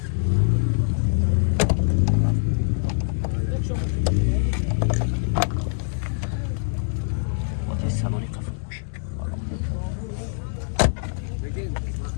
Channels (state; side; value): silent; right; digital silence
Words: Ҳолати салони қафл мошин.